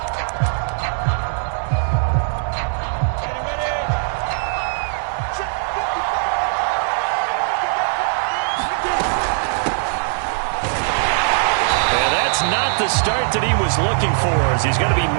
Not the start that he was looking for, as he's going to be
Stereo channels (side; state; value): left; silent; digital silence